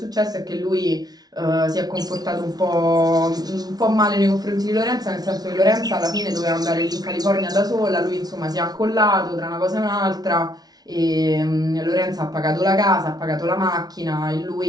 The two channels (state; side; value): late; left; 0.19 ms